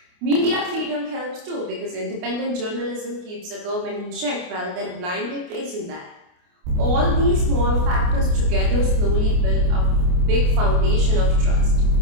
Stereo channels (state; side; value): late; left; 28 ms